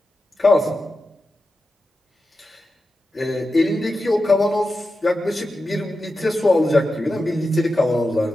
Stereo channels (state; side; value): normal; both; correlation 0.91